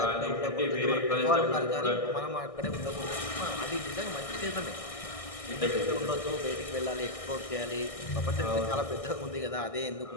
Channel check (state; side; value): late; right; 1.6 ms